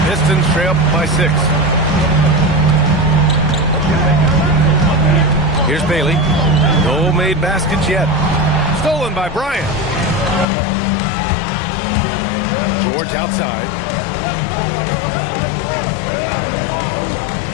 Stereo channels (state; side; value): drops out; right; at 10.5 s